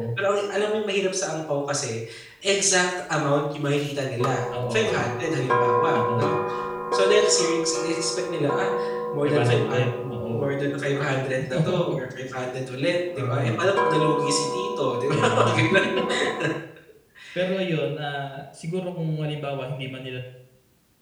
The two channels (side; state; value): both; identical; correlation 1.00